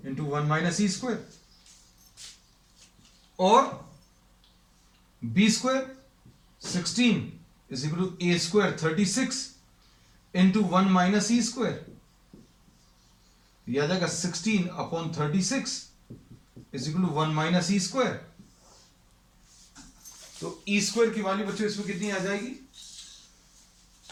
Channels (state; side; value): identical; both; correlation 1.00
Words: into 1 minus E square, और B square 16 is equal to A square 36 into 1 minus E square. याद आएगा 16 upon 36 is equal to 1 minus E square. तो E square की value बच्चों इसमें कितनी आ जाएगी?